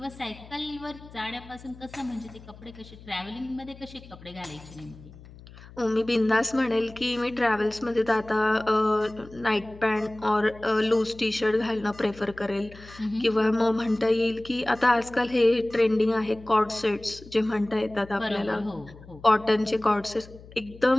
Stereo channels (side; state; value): left; noise; hum, 19 dB below the sound